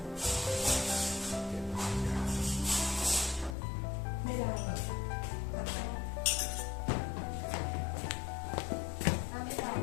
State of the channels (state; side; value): drops out; right; at 3.6 s